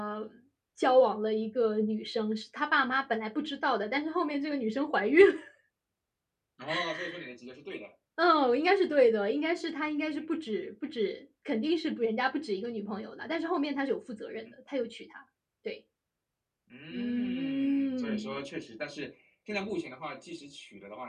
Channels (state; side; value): identical; both; correlation 1.00